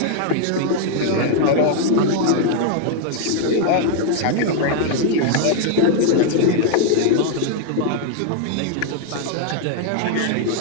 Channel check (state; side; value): different; both; correlation 0.00